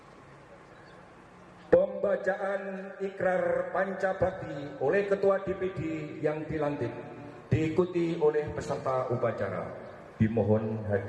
Pembacaan ikrar pancabakti oleh Ketua DPD yang dilantik diikuti oleh peserta upacara. Dimohon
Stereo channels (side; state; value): both; identical; correlation 1.00